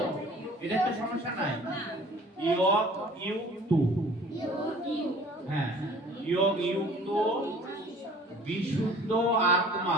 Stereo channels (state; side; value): normal; both; correlation 0.49